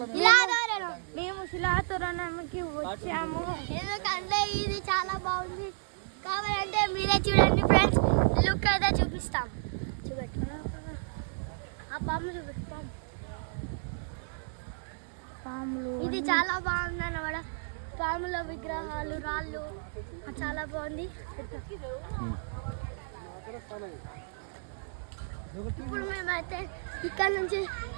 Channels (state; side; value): silent; left; digital silence